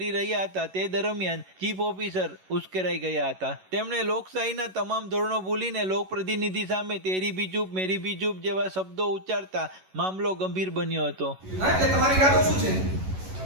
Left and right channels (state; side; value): late; left; 11 ms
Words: રહ્યા હતા। તે દરમિયાન ચીફ ઓફિસર ઉશ્કેરાઈ ગયા હતા। તેમણે લોકશાહીના તમામ ધોરણો ભૂલીને લોકપ્રતિનિધિ સામે તેરી ભી ચૂપ મેરી ભી ચૂપ જેવા શબ્દો ઉચ્ચારતા મામલો ગંભીર બન્યો હતો। તમારી ઈરાદો શું છે?